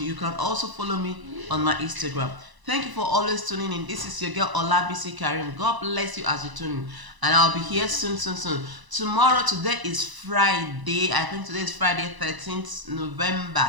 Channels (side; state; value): left; late; 1.0 ms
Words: can also follow me on my Instagram. Thank you for always tuning in. This is your girl Olabisi Karim. God bless you as you tune in, and I'll be here soon. Tomorrow, today is Friday. I think today is Friday, 13th November